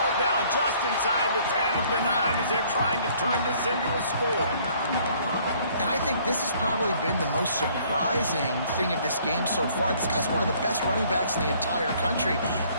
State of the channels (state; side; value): inverted; both; correlation -0.60